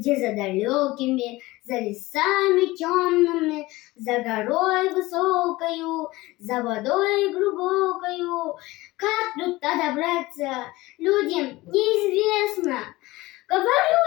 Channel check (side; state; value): right; quieter; 19.7 dB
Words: за далекими, за лесами темными, за горой высокою, за водой глубокою. Как тут добраться, людям неизвестно.